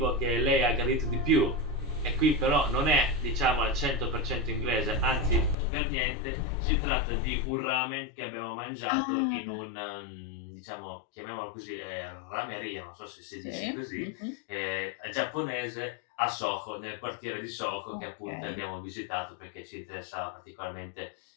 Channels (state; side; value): drops out; right; at 5.6 s